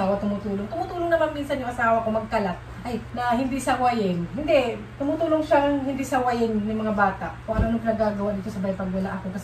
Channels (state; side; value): identical; both; correlation 1.00